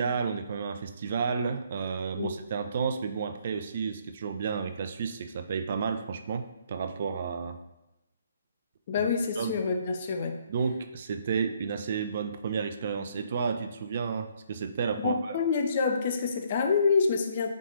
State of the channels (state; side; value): inverted; both; correlation -0.66